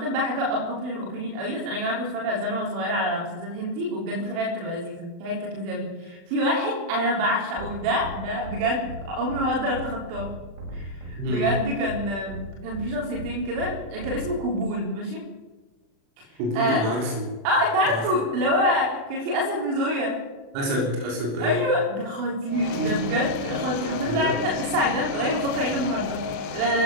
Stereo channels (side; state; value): left; late; 36 ms